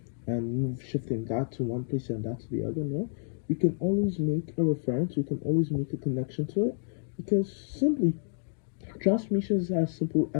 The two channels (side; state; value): right; silent; digital silence